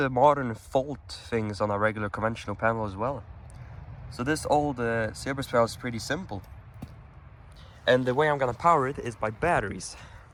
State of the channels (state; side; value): identical; both; correlation 1.00